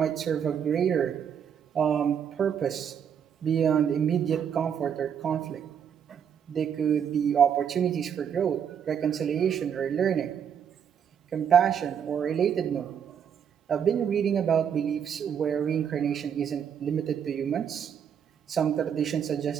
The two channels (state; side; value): quieter; left; 8.1 dB